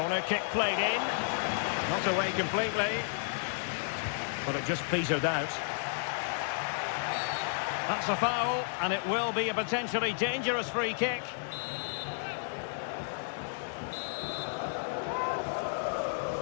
kick played in. Not away completely. But it just petered out. That's a foul, and it will be a potentially dangerous free kick.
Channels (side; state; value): right; silent; digital silence